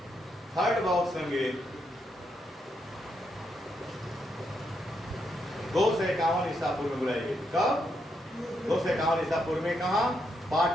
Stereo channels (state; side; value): normal; both; correlation 0.80